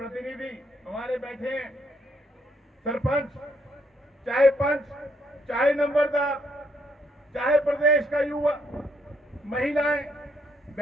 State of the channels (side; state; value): both; normal; correlation 0.72